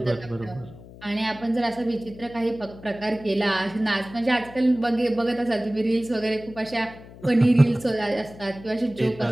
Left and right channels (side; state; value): left; noise; hum, 18 dB below the sound